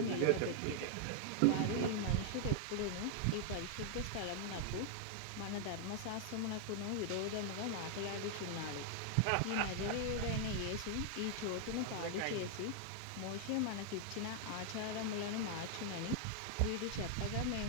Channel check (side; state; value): both; different; correlation 0.00